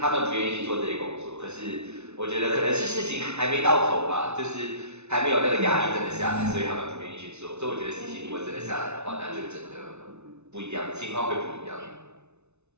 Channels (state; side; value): late; left; 0.81 ms